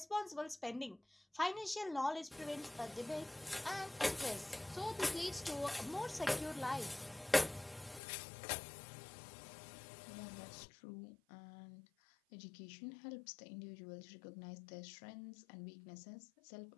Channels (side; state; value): right; drops out; at 8.0 s